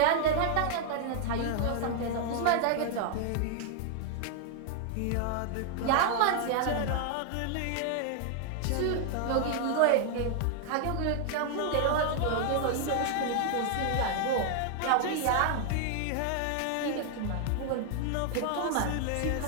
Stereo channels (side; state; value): both; different; correlation 0.00